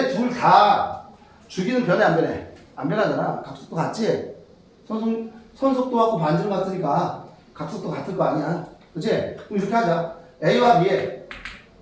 둘 다 주기는 변해 안 변해? 안 변하잖아. 각속도 같지? 선속도하고 반지름 같으니까 각속도 같을 거 아니야. 그치? 그럼 이렇게 하자. A와 B의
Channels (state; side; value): identical; both; correlation 1.00